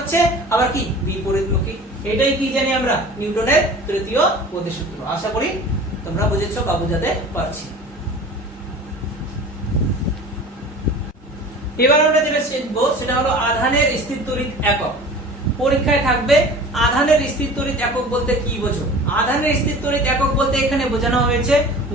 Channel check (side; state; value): both; normal; correlation 0.40